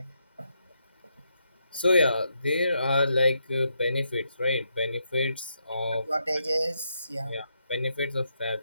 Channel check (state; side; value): inverted; both; correlation -0.80